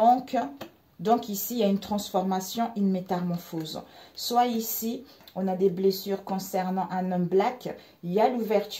donc ici, il y a une transformation, une métamorphose. Soit ici, on a des blessures concernant un homme black. Il y a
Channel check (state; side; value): identical; both; correlation 1.00